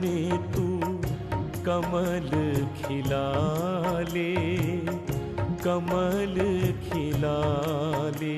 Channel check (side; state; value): both; identical; correlation 1.00